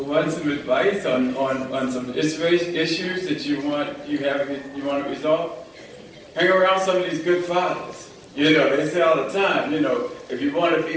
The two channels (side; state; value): both; identical; correlation 1.00